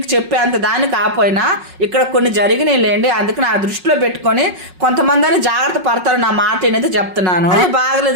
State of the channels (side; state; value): left; late; 5.4 ms